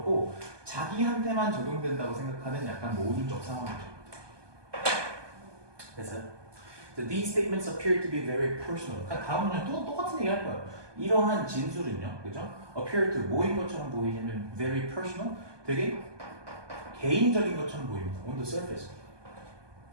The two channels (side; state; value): left; late; 1.2 ms